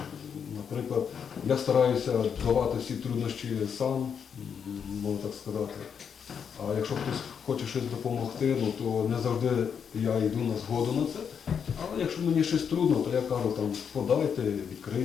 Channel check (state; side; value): quieter; right; 7.2 dB